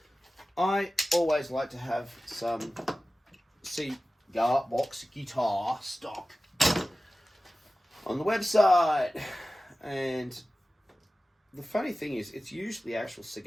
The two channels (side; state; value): both; normal; correlation 0.96